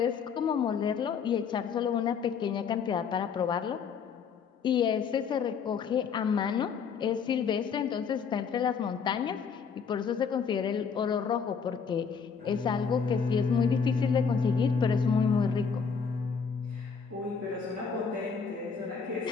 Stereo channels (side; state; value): right; quieter; 6.2 dB